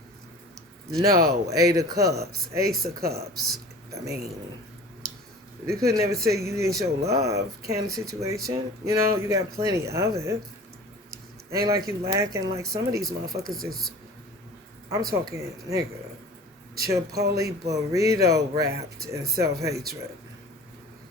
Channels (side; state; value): both; normal; correlation 0.41